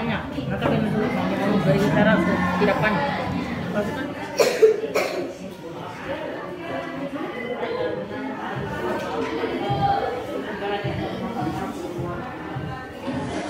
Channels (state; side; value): identical; both; correlation 1.00